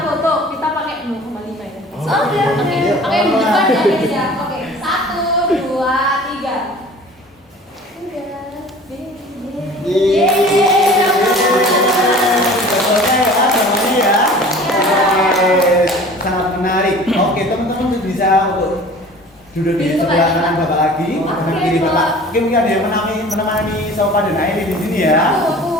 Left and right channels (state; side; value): normal; both; correlation 0.44